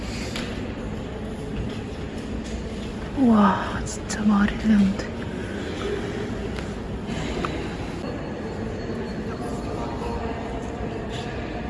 와, 진짜 말이 되는데.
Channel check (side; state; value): both; identical; correlation 1.00